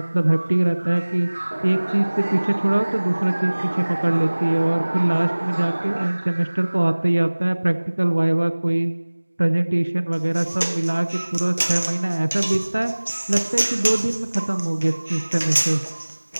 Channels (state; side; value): inverted; both; correlation -1.00